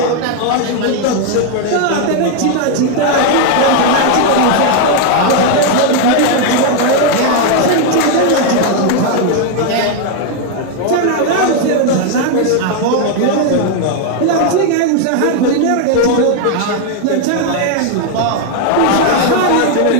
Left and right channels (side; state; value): both; different; correlation 0.01